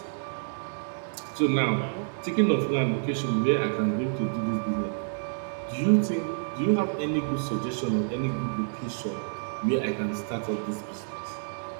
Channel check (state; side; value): silent; left; digital silence